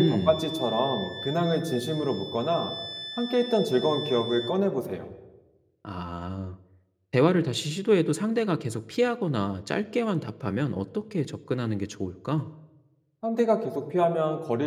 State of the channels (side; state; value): both; identical; correlation 1.00